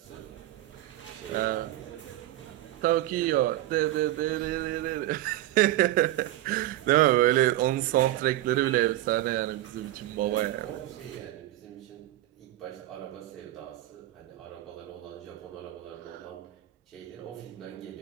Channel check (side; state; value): left; quieter; 15.0 dB